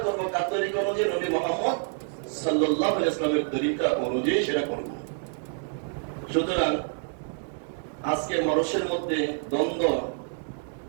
করবো কার তরিকা অনুযায়ী, নবী মুহাম্মদ সাল্লাল্লাহু আলাইহি ওয়াসাল্লামের তরিকা অনুযায়ী সেটা করব। সুতরাং আজকে মানুষের মধ্যে দ্বন্দ্ব,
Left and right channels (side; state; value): left; silent; 59 dB below the other